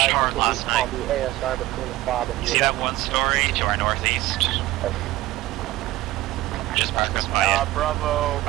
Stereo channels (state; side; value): quieter; left; 16.9 dB